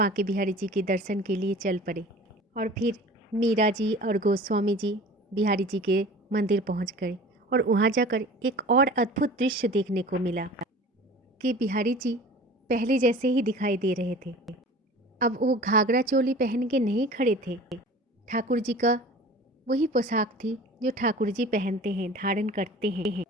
बिहारी जी के दर्शन के लिए चल पड़े। और फिर मीरा जी और गोस्वामी जी बिहारी जी के मंदिर पहुंच गए और वहां जाकर एक और अद्भुत दृश्य देखने को मिला कि बिहारी जी पहले जैसे ही दिखाई दे रहे थे। अब वो घाघरा चोली पहन के नहीं खड़े थे, ठाकुर जी का वही पोशाक थी जो ठाकुर जी पहनते हैं, धारण करते हैं।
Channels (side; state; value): both; normal; correlation 0.42